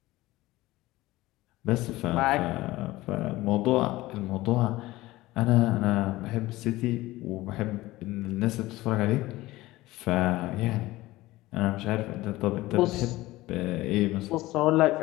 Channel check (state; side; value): quieter; right; 18.2 dB